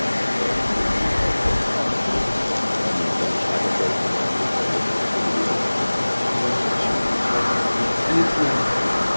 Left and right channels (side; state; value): both; inverted; correlation -1.00